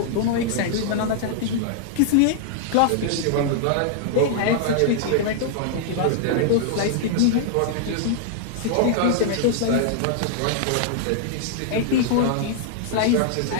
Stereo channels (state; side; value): different; both; correlation -0.01